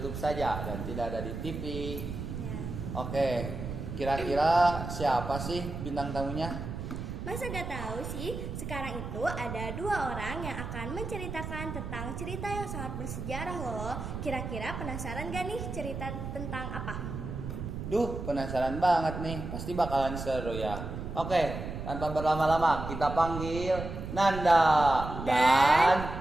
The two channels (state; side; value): noise; right; rumble, 7 dB below the sound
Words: saja dan tidak ada di TV. Ya. Oke, kira-kira siapa sih bintang tamunya? Masa gak tahu sih, sekarang itu ada 2 orang yang akan menceritakan tentang cerita yang sangat bersejarah loh. Kira-kira penasaran gak nih cerita tentang apa? Duh, penasaran banget nih, pasti bakalan seru ya. Oke, tanpa berlama-lama kita panggil Nanda dan